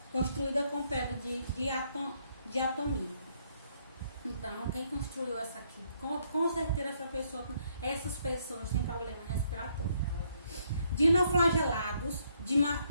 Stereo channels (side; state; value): both; inverted; correlation -0.71